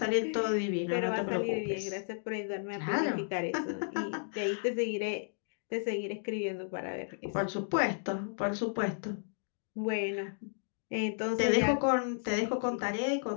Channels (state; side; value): silent; right; digital silence